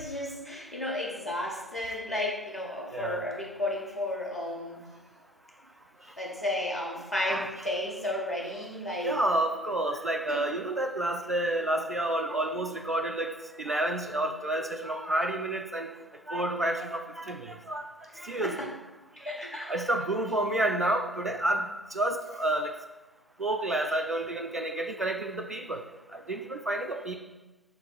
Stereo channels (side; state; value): both; normal; correlation 0.55